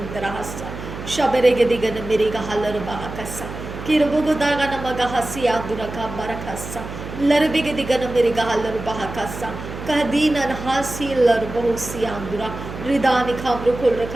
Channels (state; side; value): noise; right; hum, 10 dB below the sound